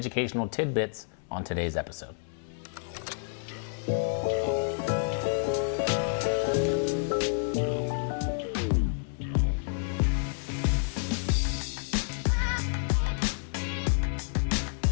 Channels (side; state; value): right; silent; digital silence